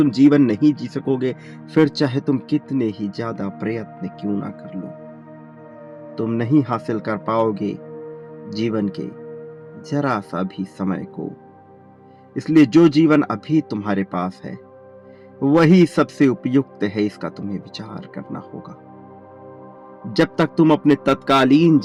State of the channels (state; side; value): identical; both; correlation 1.00